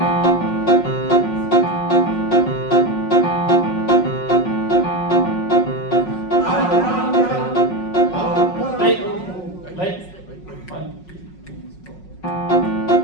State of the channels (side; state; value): right; late; 5.5 ms